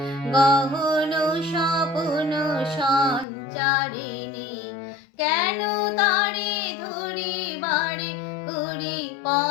গহন স্বপ্ন সঞ্চারিণী, কেন তারে ধরিবারে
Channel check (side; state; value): right; drops out; at 3.2 s